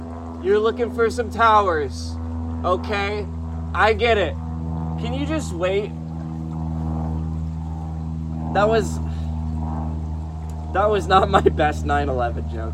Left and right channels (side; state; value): both; identical; correlation 1.00